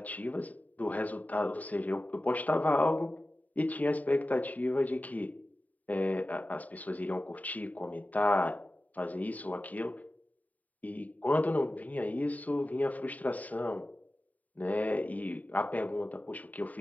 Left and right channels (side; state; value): right; late; 0.073 ms